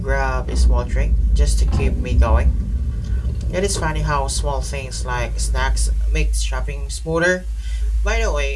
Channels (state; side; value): identical; both; correlation 1.00